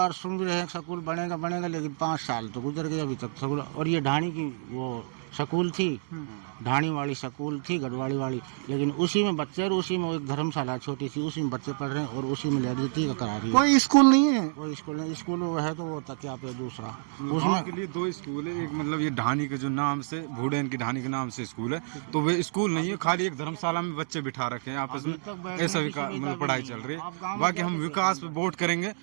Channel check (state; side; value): silent; left; 59 dB below the other